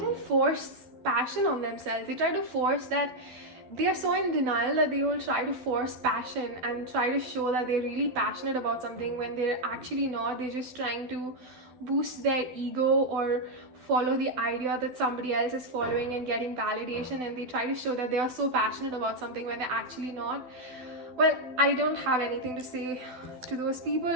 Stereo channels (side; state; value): left; late; 12 ms